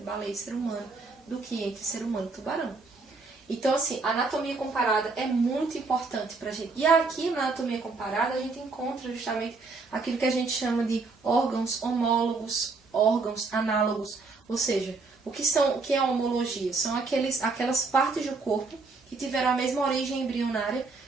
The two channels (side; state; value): left; quieter; 4.0 dB